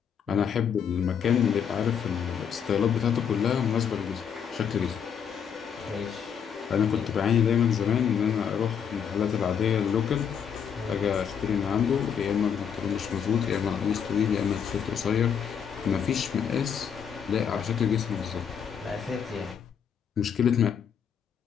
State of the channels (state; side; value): quieter; right; 7.7 dB